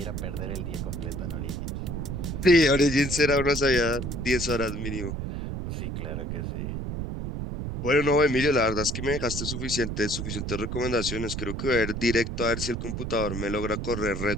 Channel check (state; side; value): noise; right; rumble, 4 dB below the sound